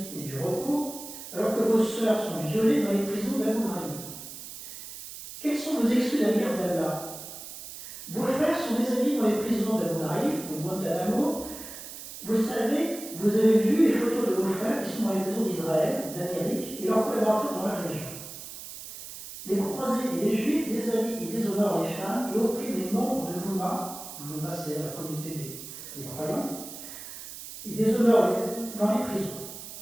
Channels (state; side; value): noise; right; hiss, 12 dB below the sound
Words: et du repos alors que vos sœurs sont violées dans les prisons d'Abu Ghraib? Quelles sont vos excuses à l'égard d'Allah? Vos frères sont déshabillés dans les prisons d'Abu Ghraib, de Guantanamo. Vous savez, vous avez vu les photos de vos frères qui sont dans les prisons d'Israël, d'Amérique et leurs collaborateurs dans la région. Les croisés et les juifs déshabillent et déshonorent les femmes et oppriment les membres de l'Oumma. L'Oumma, c'est la communauté des croyants. Ils déshonorent dans les prisons.